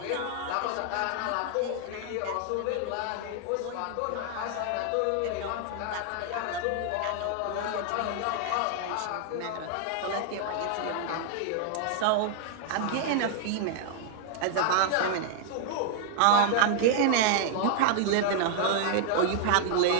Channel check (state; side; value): different; both; correlation 0.00